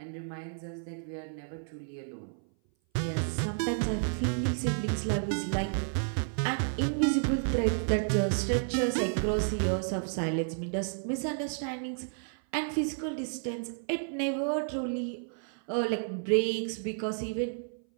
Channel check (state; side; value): silent; left; 56 dB below the other